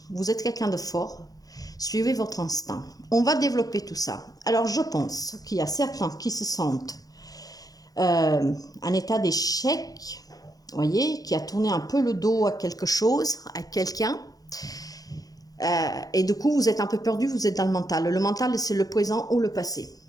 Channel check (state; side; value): late; right; 0.18 ms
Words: Vous êtes quelqu'un de fort. Suivez votre instinct. On va développer tout ça. Alors, je pense qu'il y a certains qui se sentent en état d'échec, voyez, qui a tourné un peu le dos à quelque chose, à quelqu'un. Et du coup, vous êtes un peu perdu, vous êtes dans le mental. Le mental, c'est le présent ou le passé.